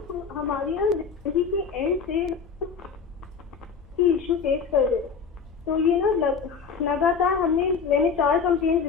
हमारे यहाँ जिंदगी के एंड से इशू फेस कर रहे, तो ये ना लगातार मैंने 4 कंप्लेंट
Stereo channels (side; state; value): right; quieter; 5.8 dB